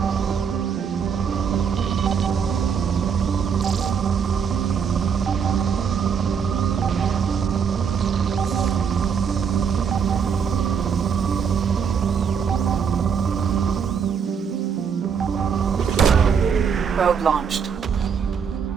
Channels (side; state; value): left; quieter; 6.8 dB